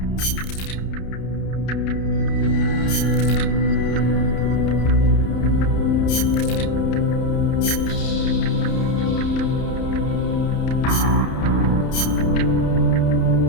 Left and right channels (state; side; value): late; right; 31 ms